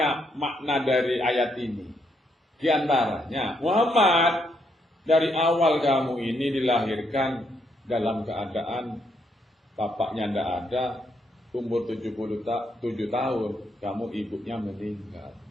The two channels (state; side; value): normal; both; correlation 0.76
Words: makna dari ayat ini. Di antaranya, Muhammad, dari awal kamu ini dilahirkan dalam keadaan bapaknya tidak ada, umur 77 tahun, kamu ibunya meninggal.